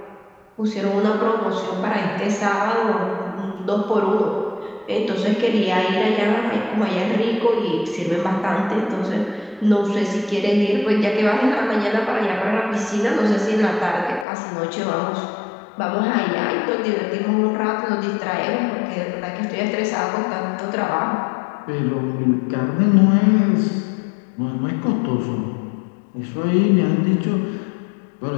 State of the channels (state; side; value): drops out; right; at 14.2 s